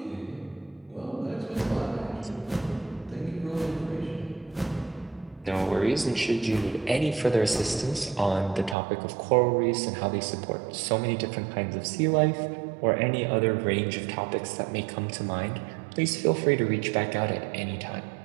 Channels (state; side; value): drops out; left; at 8.8 s